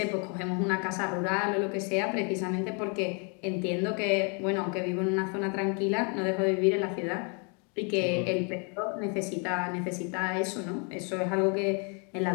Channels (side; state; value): right; quieter; 36.3 dB